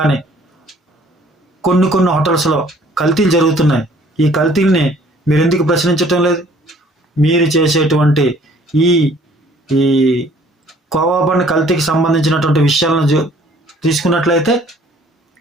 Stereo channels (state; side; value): normal; both; correlation 0.57